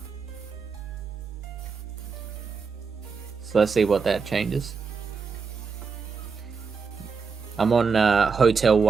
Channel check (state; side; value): quieter; left; 5.3 dB